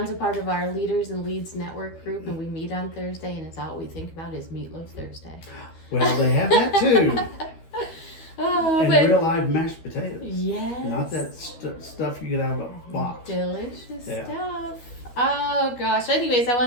a part of our Leaders and Leads network group, and we meet on Thursday, and it's all we think about is Meatloaf Thursday. Well, they have that too. Oh, And but real live mashed potatoes. yes. Not that stuff you get out of a box. Delicious Yeah. stuff. Oh gosh. Anyways, I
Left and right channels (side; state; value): right; late; 13 ms